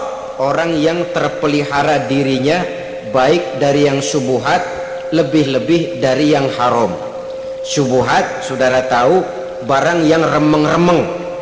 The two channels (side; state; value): both; identical; correlation 1.00